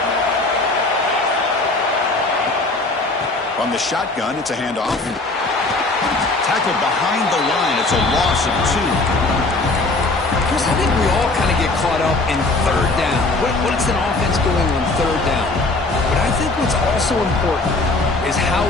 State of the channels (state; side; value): quieter; right; 3.2 dB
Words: From the shotgun, it's a handoff. Tackled behind the line. It's a loss of 2. Chris, I think we all kind of get caught up in third down. What's an offense doing on third down? But I think what's also important is how